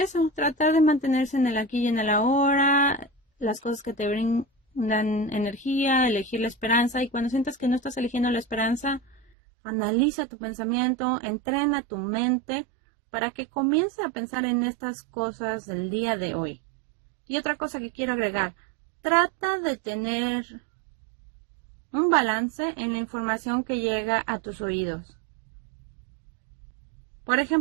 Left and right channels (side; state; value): left; drops out; at 9.2 s